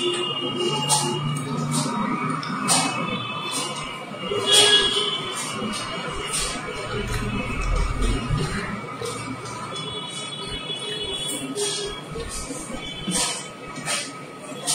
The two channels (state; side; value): identical; both; correlation 1.00